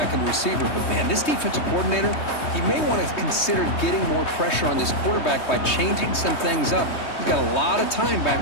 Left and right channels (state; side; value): late; right; 3.2 ms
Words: and receiver. But, man, this defensive coordinator, he may want to consider getting more pressure on this quarterback by changing some things up. He's got a lot of time